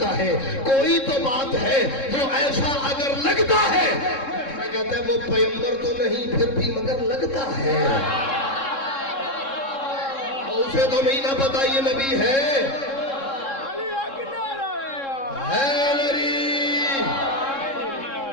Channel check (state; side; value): late; right; 3.7 ms